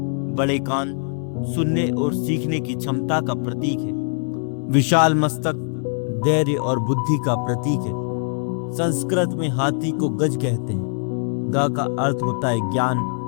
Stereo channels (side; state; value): right; silent; digital silence